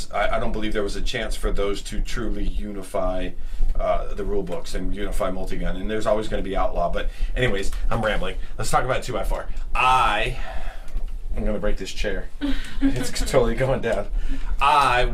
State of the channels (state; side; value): identical; both; correlation 1.00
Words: I don't believe there was a chance for those to truly unify the rule books and unify multi-gun. And there's always going to be outlaw. But anyways, I'm rambling. Let's talk about 2x4. I'm going to break this chair. It's totally going down. I